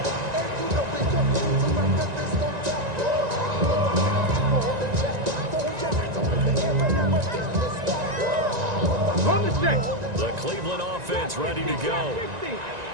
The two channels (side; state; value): left; late; 1.9 ms